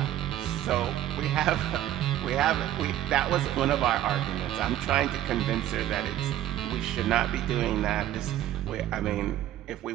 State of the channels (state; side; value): quieter; left; 12.9 dB